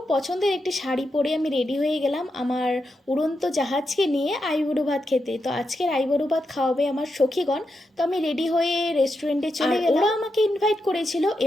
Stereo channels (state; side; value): normal; both; correlation 0.86